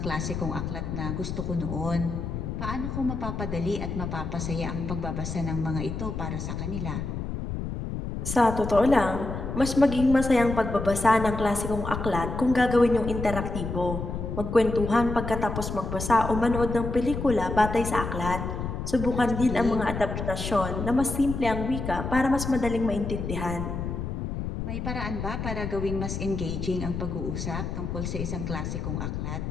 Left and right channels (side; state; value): left; noise; rumble, 4 dB below the sound